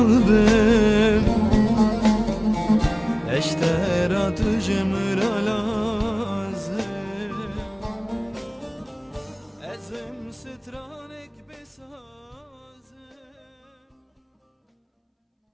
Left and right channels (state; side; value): identical; both; correlation 1.00